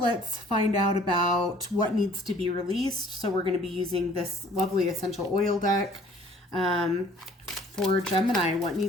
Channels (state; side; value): normal; both; correlation 0.55